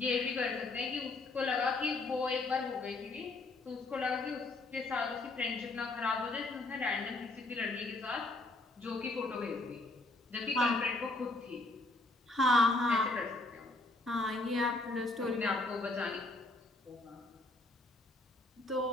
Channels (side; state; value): right; quieter; 3.0 dB